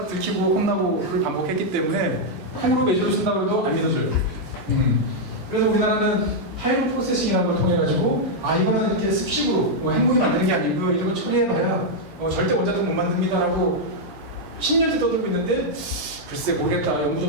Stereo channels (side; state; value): both; normal; correlation -0.03